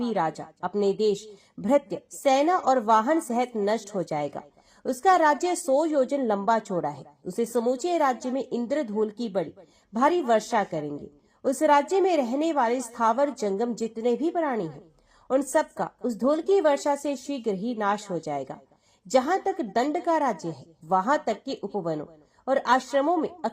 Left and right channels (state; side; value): identical; both; correlation 1.00